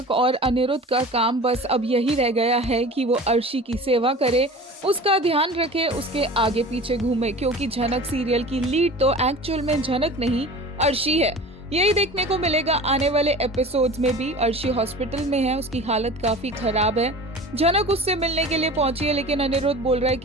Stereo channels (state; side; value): normal; both; correlation 0.38